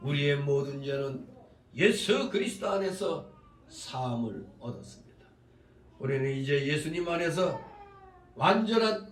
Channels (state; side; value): identical; both; correlation 1.00